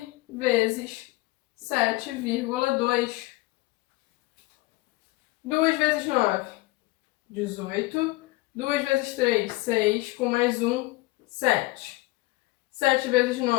vezes 7,2. 2 vezes 9, 18. 2 vezes 3, 6. Com mais 1, 7. 7 vezes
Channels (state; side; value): quieter; right; 21.3 dB